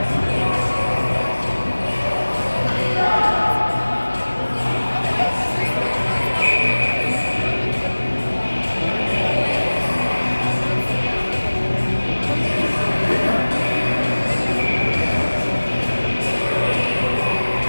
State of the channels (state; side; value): inverted; both; correlation -1.00